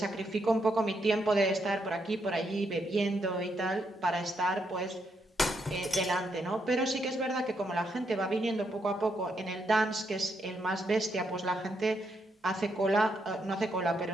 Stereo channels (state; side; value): normal; both; correlation 0.78